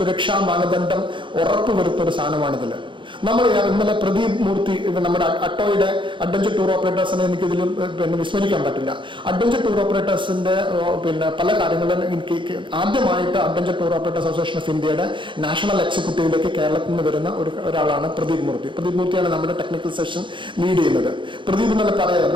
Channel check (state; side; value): late; left; 0.24 ms